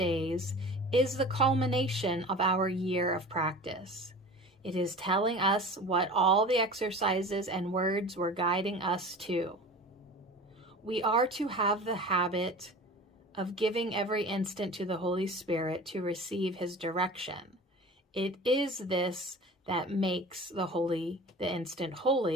is the culmination of our year of practice. It is telling us what all the exercises and words were guiding us to. We are to have the habit of giving every instant to the Holy Spirit to receive His direction. It is this that makes the instant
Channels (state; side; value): normal; both; correlation 0.38